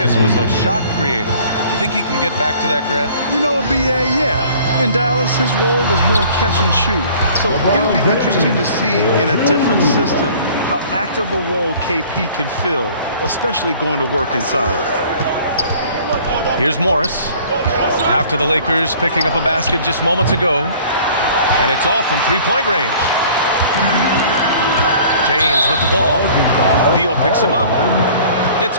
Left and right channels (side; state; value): both; inverted; correlation -0.51